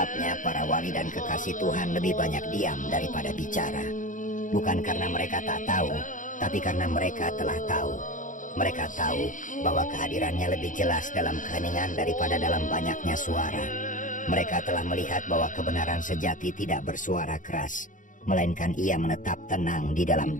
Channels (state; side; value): late; right; 0.38 ms